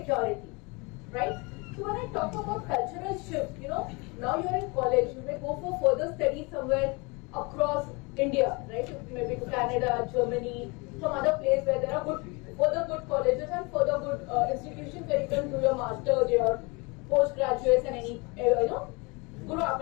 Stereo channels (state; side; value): quieter; right; 28.1 dB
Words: right? So when I talk about cultural shift, now you're in college, you may go for further study somewhere across India, right? Maybe to Canada, Germany, some other place where there are further good colleges and further good institutions where you can do your master's, your postgraduates and any, grow up